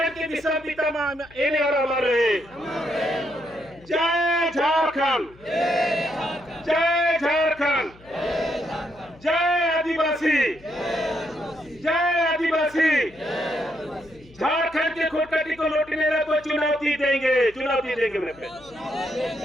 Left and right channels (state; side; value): noise; left; hum, 25 dB below the sound